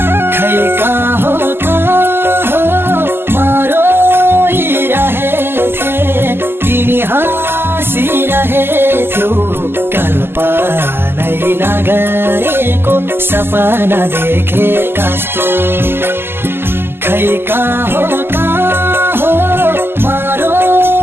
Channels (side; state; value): left; late; 0.11 ms